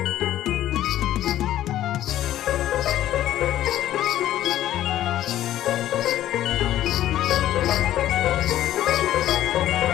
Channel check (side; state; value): right; quieter; 12.9 dB